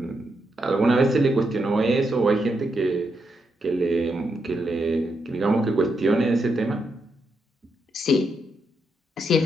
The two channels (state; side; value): normal; both; correlation 0.82